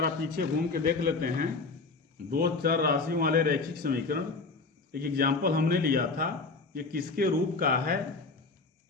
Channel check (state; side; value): quieter; right; 4.0 dB